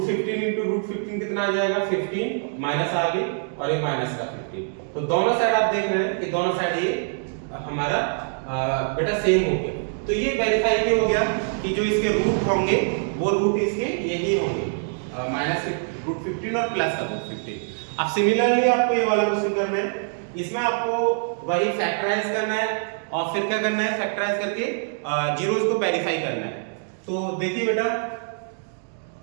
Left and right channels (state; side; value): silent; left; digital silence